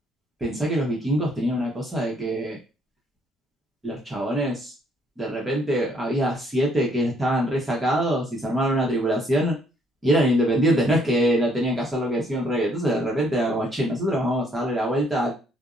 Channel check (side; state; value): both; normal; correlation 0.66